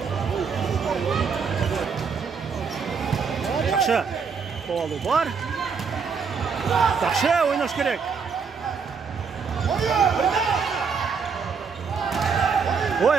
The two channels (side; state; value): left; quieter; 5.8 dB